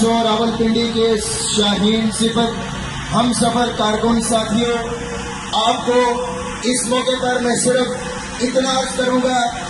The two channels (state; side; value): identical; both; correlation 1.00